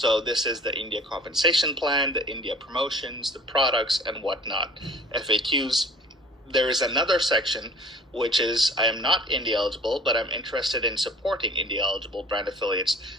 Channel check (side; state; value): both; normal; correlation 0.46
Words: this is the India compensation plan, the India promotions, the products and whatnot, FAQs. There is another section which is I am not India eligible, but I'm interested in supporting India eligible brand affiliates.